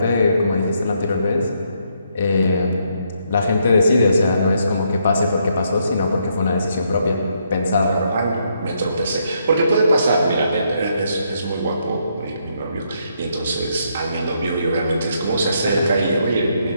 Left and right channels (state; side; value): inverted; both; correlation -0.75